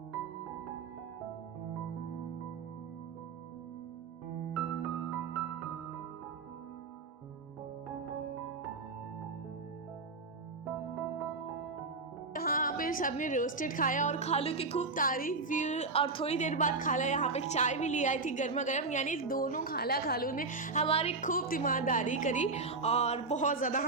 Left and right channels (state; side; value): quieter; left; 3.9 dB